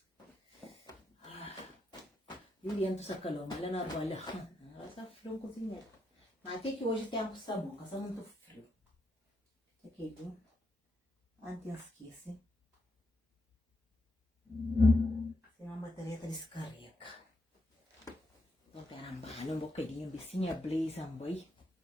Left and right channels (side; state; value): both; normal; correlation 0.81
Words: Juliano sa calor, mas ela não arbolha. Ela está frio cozinhar. Mas até que hoje tem um sabão, que está muito frio. Aqui, viu? Antes esquece. Senão a bateria descarrega. Vou pegar um bocadinho, um bicinho blaze, boi.